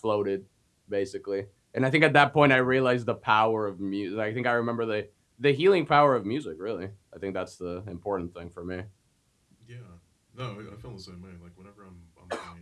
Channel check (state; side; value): identical; both; correlation 1.00